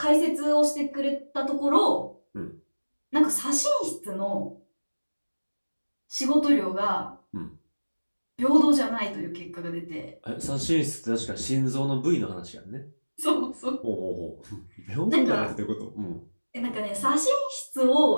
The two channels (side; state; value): both; inverted; correlation -1.00